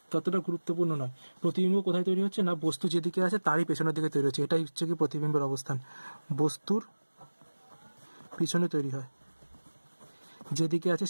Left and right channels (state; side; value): inverted; both; correlation -1.00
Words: ততটা গুরুত্বপূর্ণ নয়। প্রতিবিম্ব কোথায় তৈরি হচ্ছে না, বস্তু যেদিকে আছে তারই পেছনের দিকে তৈরি হচ্ছে, এটাই হচ্ছে কি প্রতিবিম্বের অবস্থান। বস্তুর পিছনে তৈরি হয়, যেদিকে আছে